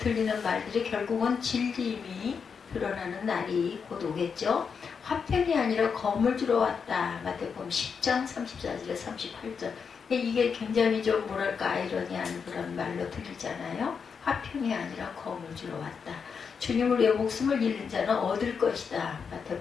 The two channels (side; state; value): right; quieter; 6.1 dB